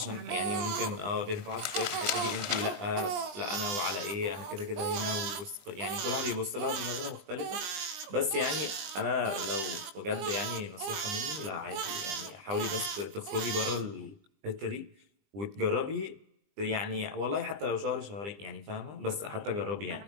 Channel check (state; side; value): late; left; 20 ms